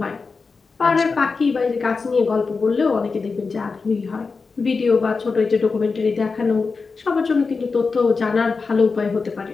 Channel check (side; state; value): right; quieter; 4.6 dB